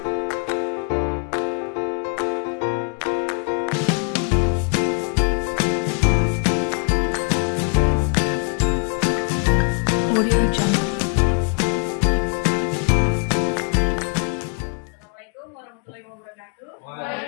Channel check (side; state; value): right; quieter; 37.5 dB